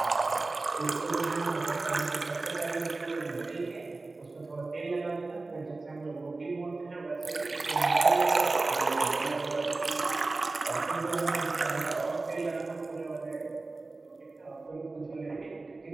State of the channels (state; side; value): quieter; left; 3.4 dB